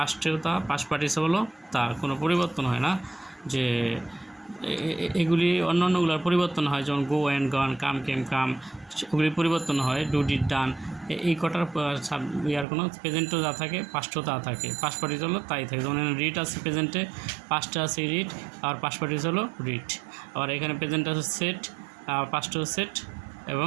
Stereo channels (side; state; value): left; drops out; at 12.7 s